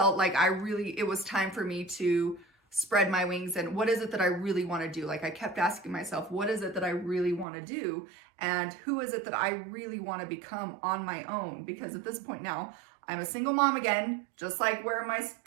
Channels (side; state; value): left; drops out; at 7.5 s